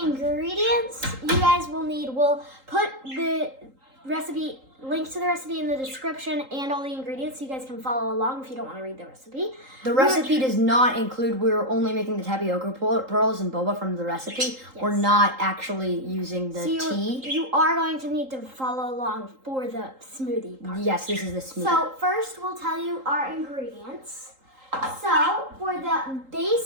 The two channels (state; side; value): late; left; 3.8 ms